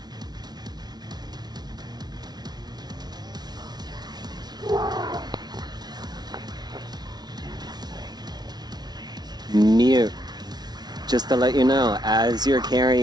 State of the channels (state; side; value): late; left; 0.19 ms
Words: Mute. Just to let you know, as you're